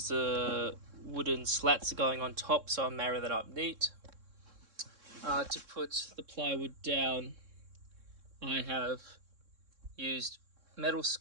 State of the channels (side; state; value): left; late; 3.6 ms